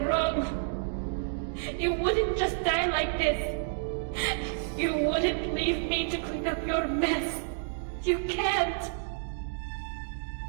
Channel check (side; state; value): left; silent; digital silence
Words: wrong. You wouldn't just die like this. You wouldn't leave me to clean up your mess. You can't.